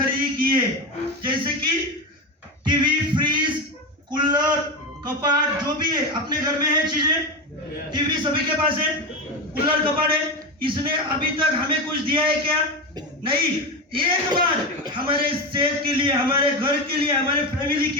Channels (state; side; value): normal; both; correlation 0.18